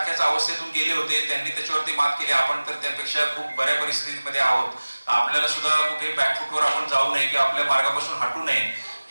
अवस्थेतून गेले होते, त्यांनी त्याच्यावरती मात केली, आपण तर त्यापेक्षा खूप बऱ्या परिस्थितीमध्ये आहोत. आपल्याला सुद्धा कुठे बॅकफुटवर आपण जाऊ नये किंवा आपल्या मार्गापासून हटू नये,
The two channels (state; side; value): inverted; both; correlation -1.00